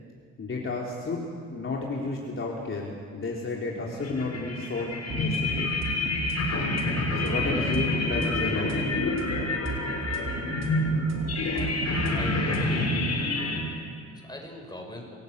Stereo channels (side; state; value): both; normal; correlation 0.33